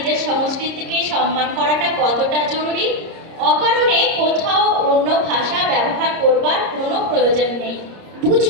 সংস্কৃতিকে সম্মান করাটা কতটা জরুরি। অকারণে কোথাও অন্য ভাষা ব্যবহার করবার কোনো প্রয়োজন নেই।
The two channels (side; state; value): left; late; 30 ms